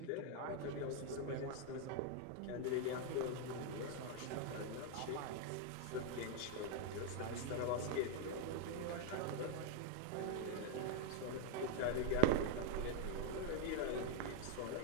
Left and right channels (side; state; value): both; different; correlation 0.01